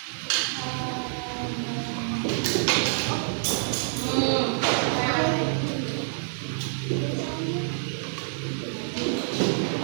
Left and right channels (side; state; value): left; silent; 60 dB below the other